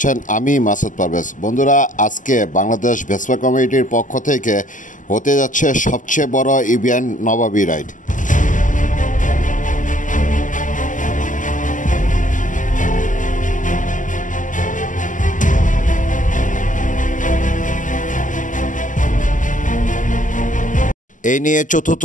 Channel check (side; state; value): right; late; 0.37 ms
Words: আমি মাসুদ পারভেজ। বন্ধুরা, আজকে বাংলাদেশ ভেসপা কমিটির পক্ষ থেকে হতে যাচ্ছে সবচেয়ে বড় ইভেন্ট নবাবী রাইড। এই নিয়ে